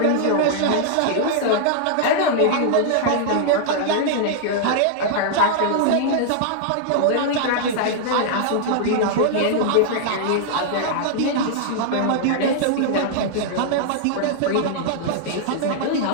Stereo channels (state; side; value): different; both; correlation -0.01